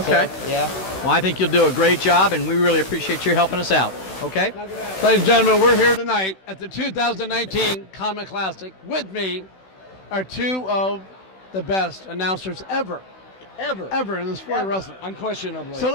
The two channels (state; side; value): late; right; 16 ms